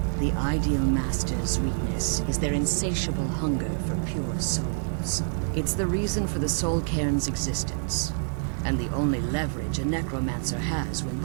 The Ideal Masters' weakness is their insatiable hunger for pure souls. It's the reason for the Soul Cairn's existence, and the only leverage a necromancer has when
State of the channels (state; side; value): silent; left; 60 dB below the other